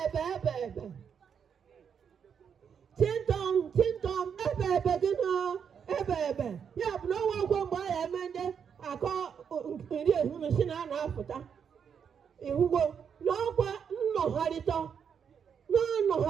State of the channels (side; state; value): left; quieter; 7.3 dB